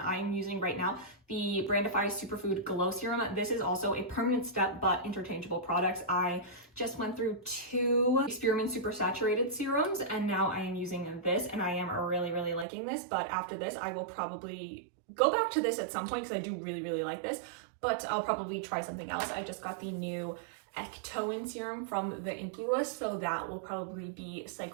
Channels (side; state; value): left; drops out; at 12.7 s